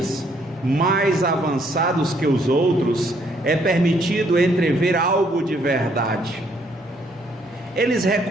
mais avançados que os outros, é permitido entrever algo de verdade. Eles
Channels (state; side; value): normal; both; correlation 0.68